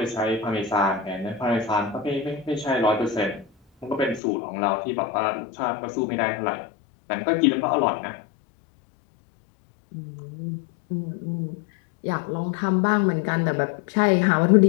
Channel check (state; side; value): drops out; right; at 4.2 s